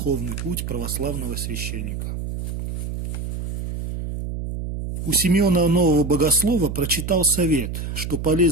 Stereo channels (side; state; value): right; noise; hum, 5 dB below the sound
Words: путь православного священника». У Симеона Нового Богослова прочитал совет, что